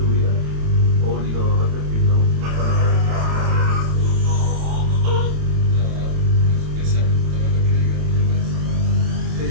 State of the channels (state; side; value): late; left; 27 ms